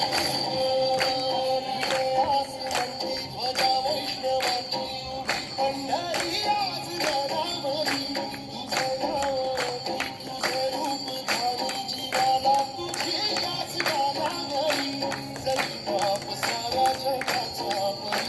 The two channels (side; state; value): both; identical; correlation 1.00